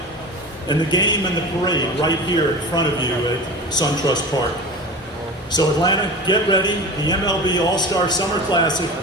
and the game and the parade right here in front of you at SunTrust Park. So Atlanta, get ready. The MLB All-Star Summer Classic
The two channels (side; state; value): both; normal; correlation 0.32